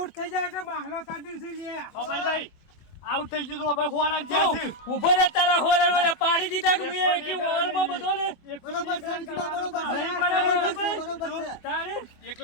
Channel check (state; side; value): late; right; 24 ms